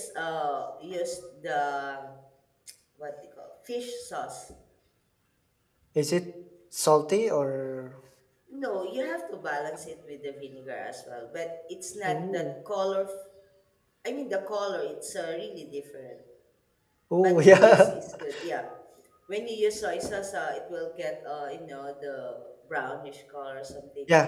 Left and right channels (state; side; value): identical; both; correlation 1.00